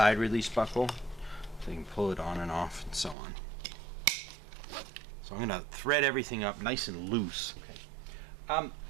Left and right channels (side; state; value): left; drops out; at 3.2 s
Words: release buckle, so you can pull it on and off and so on. So I'm going to thread everything up nice and loose. Okay.